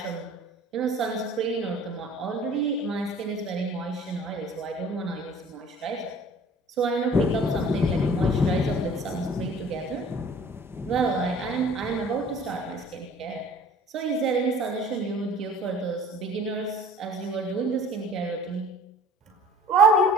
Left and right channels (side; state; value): both; normal; correlation 0.49